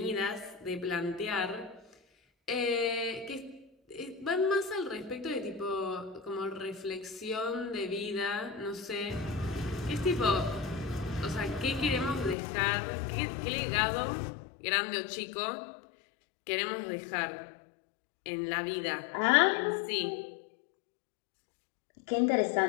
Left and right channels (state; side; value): drops out; right; at 12.4 s